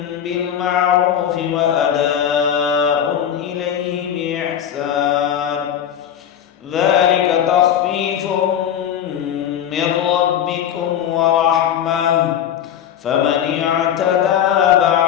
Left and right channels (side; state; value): right; quieter; 9.6 dB